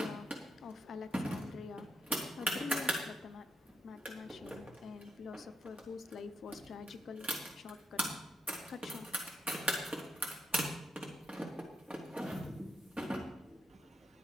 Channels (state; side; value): normal; both; correlation 0.80